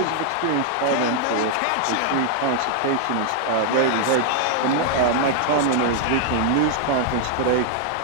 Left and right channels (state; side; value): different; both; correlation -0.01